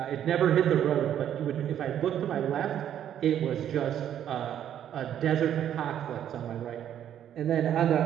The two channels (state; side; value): quieter; left; 10.2 dB